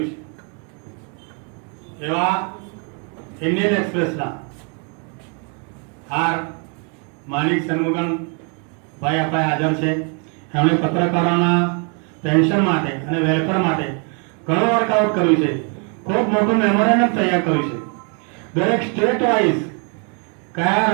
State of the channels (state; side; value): quieter; left; 37.6 dB